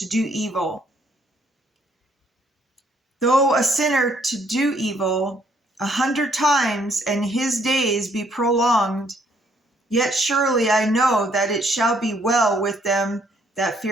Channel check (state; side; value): normal; both; correlation 0.67